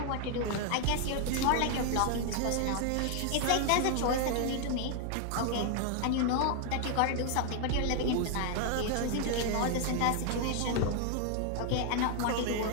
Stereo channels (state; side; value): different; both; correlation 0.00